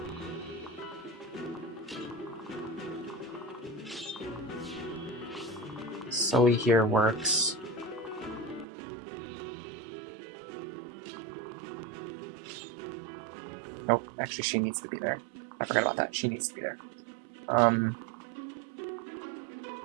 Sully here works. Nope, actually she needs to be there. I forgot about that. She needs to be there.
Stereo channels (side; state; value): left; drops out; at 8.7 s